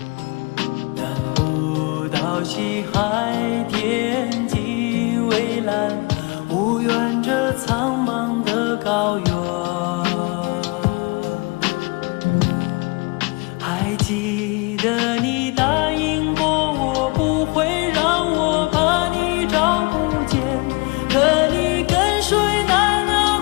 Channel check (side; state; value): right; quieter; 28.4 dB